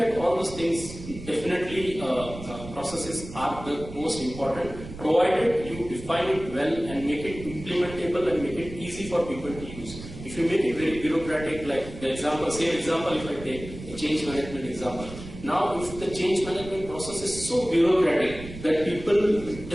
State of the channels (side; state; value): right; noise; rumble, 13 dB below the sound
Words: all those things, definitely processes are the most important, provided you define it well and make it implementable and make it easy for people to use. If you make it very bureaucratic, like the example, same example if I take a change management example. Now, if the change management process is so bureaucratic that people